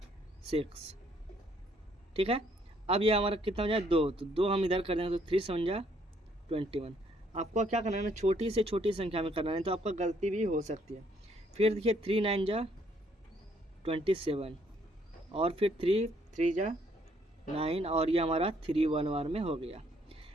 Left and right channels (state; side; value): normal; both; correlation 0.67